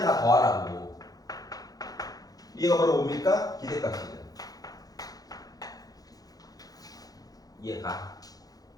더하라고. 이해가 바로 뭡니까? 기대값이죠. 이해가?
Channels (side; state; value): right; late; 0.18 ms